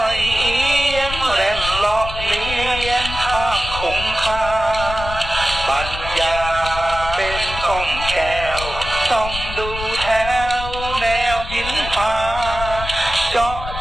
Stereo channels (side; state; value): left; noise; rumble, 9 dB below the sound